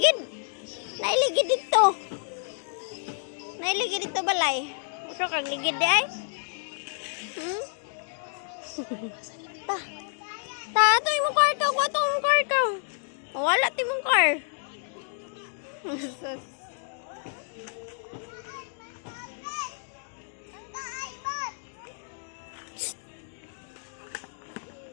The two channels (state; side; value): silent; right; 57 dB below the other